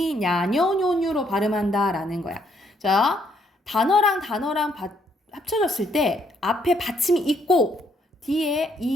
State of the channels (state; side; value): normal; both; correlation 0.70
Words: 냐, 녀, 뇨,뇨로 발음한다라는 거야. 자, 단어랑 합쳐졌을 때 앞에 받침이 있고 뒤에